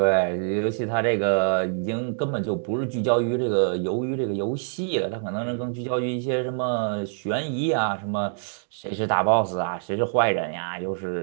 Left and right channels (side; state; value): left; silent; digital silence